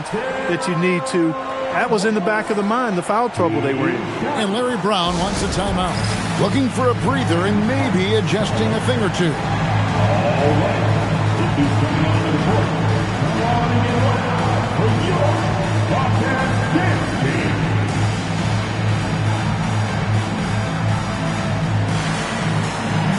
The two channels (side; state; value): both; identical; correlation 1.00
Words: that you need to. That was in the back of the mind, the foul trouble they were in. And Larry Brown wants a timeout. Looking for a breather and maybe adjusting a thing or two. All right. This is coming on to the court. Warming it up for your Bobcats dance team.